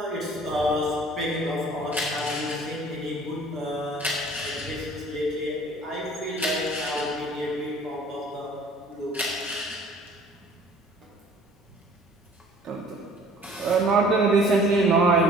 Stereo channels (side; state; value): both; normal; correlation 0.51